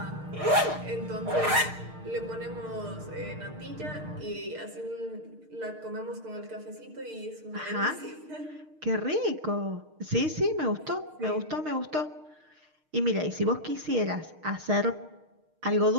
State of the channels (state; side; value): late; left; 6.5 ms